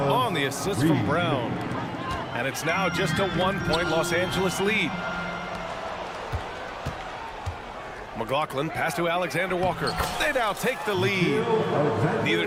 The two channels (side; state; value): both; identical; correlation 1.00